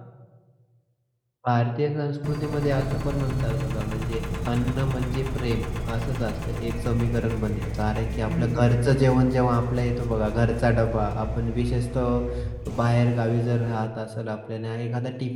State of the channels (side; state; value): both; identical; correlation 1.00